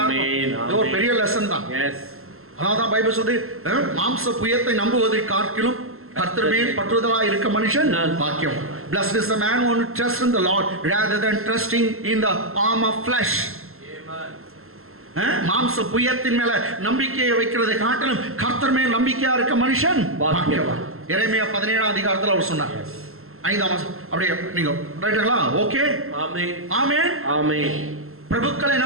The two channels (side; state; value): left; late; 0.62 ms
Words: இது ஒரு பெரிய லெசன் தான். அதான் பைபிள் சொல்லுது, மாம்ச புயத்தை நம்புவதை காட்டிலும் கர்த்தர் மேல் பற்றுதலா இருக்க மனுஷன் பாக்கியம். Blessed is the man who trusts in the Lord rather than trusting in the arm of flesh. மாம்ச புயத்தின் மேல நம்பிக்கையை வைக்கிறதை காட்டிலும் கர்த்தர் மேல் நம்பிக்கையா இருக்க மனுஷன் பாக்கியவான். எரேமியா 17ஆம் அதிகாரத்துல அவர் சொன்னார். 5ஆம் வசனம். அப்படியே நீங்க ரைட்டுங்களா? ஓகே. ஆமென். ஆமென். ஆமென். பிரபுக்களை